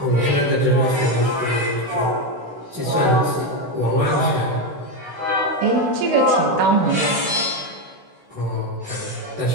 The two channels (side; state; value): left; late; 16 ms